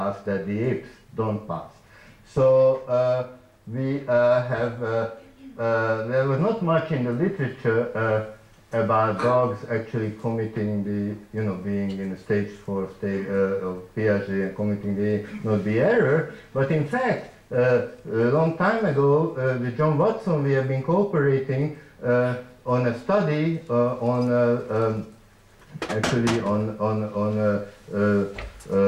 that the apes don't pass. So we have, there was not much in the literature about dogs actually committing the, being in the stage 4 state of Piaget and committing the error. But in fact, a long time ago, with John Watson, we have been cooperating on a study actually on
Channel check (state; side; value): identical; both; correlation 1.00